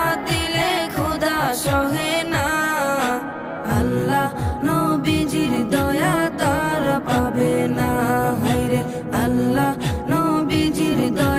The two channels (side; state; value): both; identical; correlation 1.00